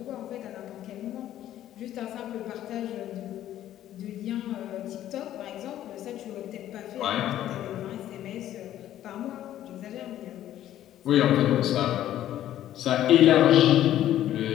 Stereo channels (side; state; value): right; quieter; 12.4 dB